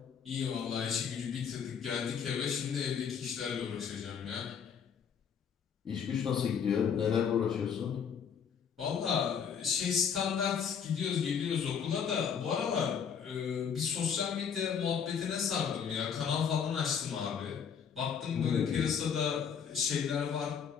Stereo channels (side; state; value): right; quieter; 7.2 dB